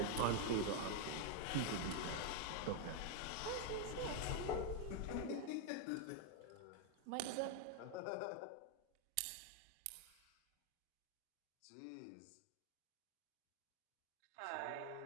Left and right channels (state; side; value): different; both; correlation 0.01